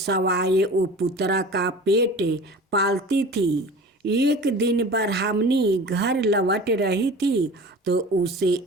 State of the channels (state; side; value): normal; both; correlation 0.39